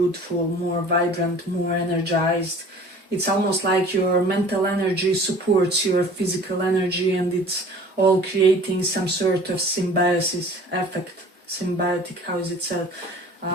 more vibrant, more energized. It's almost like your mental energy supports your physical energy, and it's all creating some sort of symbiosis effect. Symbiotic, how is it said?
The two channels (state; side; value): normal; both; correlation 0.46